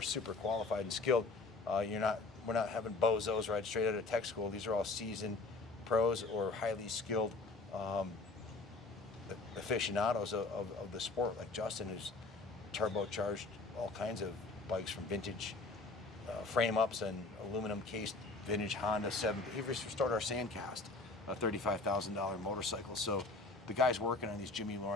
super qualified and skilled. We're not having bozos right straight out of tech school. These are all seasoned pros or highly skilled aficionados of the sport, like Justin, who's turbocharged all kinds of bikes from vintage frame ups and aluminum cased vintage Honda 7. He restored our Sandcast, a $35,000 motorcycle. So the guys working on these, Jimmy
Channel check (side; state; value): right; quieter; 3.6 dB